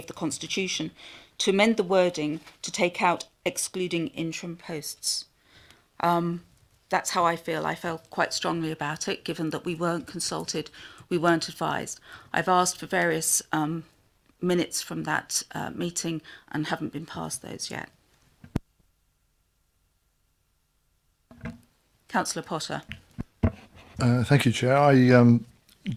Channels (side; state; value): both; identical; correlation 1.00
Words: the constitution to amend the wording to take out excluding interim posts. That's how I feel. I felt quite strongly about it, given that we weren't consulted, we weren't advised. I've asked for various minutes from that meeting and haven't been passed those yet. Councillor Potter. Thank you, Chair. I